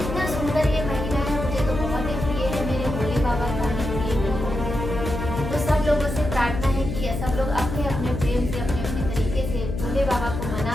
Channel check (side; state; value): left; noise; hum, 5 dB below the sound